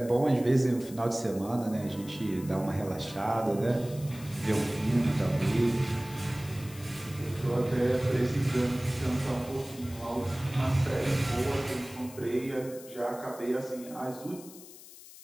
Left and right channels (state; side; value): noise; left; hiss, 18 dB below the sound